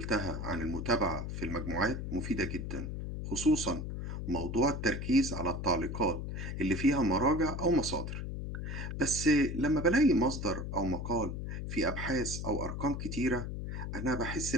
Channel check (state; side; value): noise; left; hum, 5 dB below the sound